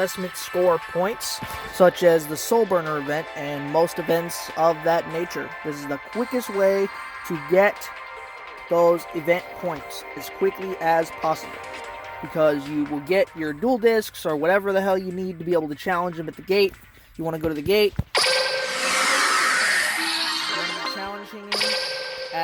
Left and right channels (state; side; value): identical; both; correlation 1.00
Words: score points, such as the Soul Burner event and most events of that nature. This is the quickest way to get those event points as quickly as possible, because you will get your dual discs or whatever the hell you need to be able to challenge them at the gate. You want to go to the gate, challenging him